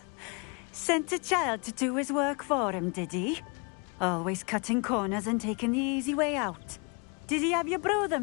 Sent a child to do his work for him, did he? Always cutting corners and taking the easy way out. Did he have you brew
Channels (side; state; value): right; quieter; 33.3 dB